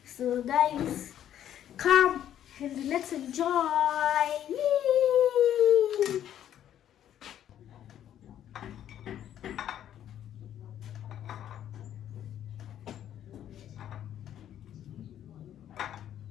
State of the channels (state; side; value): quieter; right; 10.8 dB